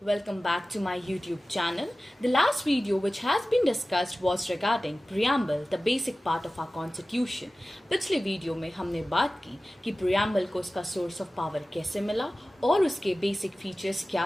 Welcome back to my YouTube channel. The last video which has been discussed was regarding preamble, the basic part of our constitution. पिछले video में हमने बात की कि preamble को उसका source of power कैसे मिला और उसके basic features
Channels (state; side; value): normal; both; correlation 0.96